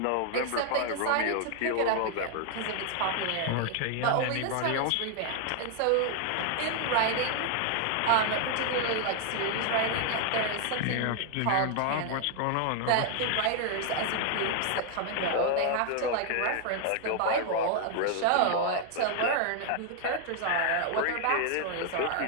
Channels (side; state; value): both; different; correlation 0.00